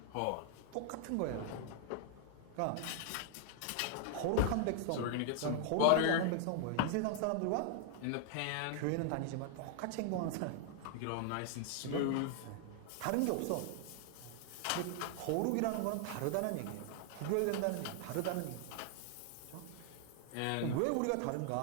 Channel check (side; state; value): both; different; correlation 0.00